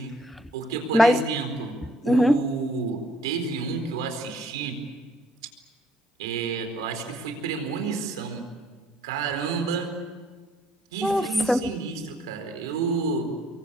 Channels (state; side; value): normal; both; correlation 0.62